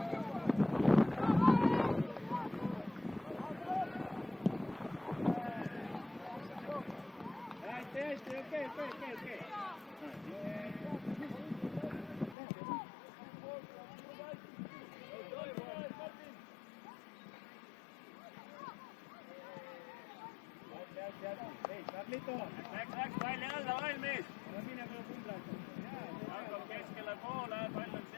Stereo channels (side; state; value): right; drops out; at 12.4 s